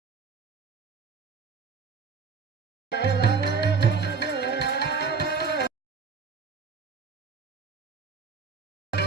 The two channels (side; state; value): left; quieter; 5.2 dB